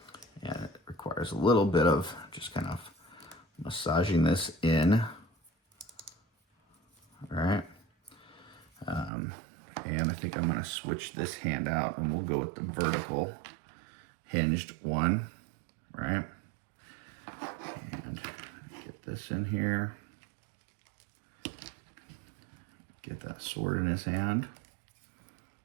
And it requires a little bit of just kind of massaging this in. All right. And I think I'm going to switch this hand out and we'll go with the vertical hinged one. Right. And get this in here. Get that sword in his hand.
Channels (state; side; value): drops out; left; at 9.1 s